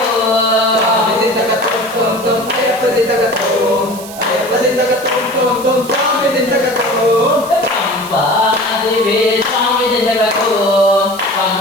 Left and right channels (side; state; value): right; noise; hiss, 15 dB below the sound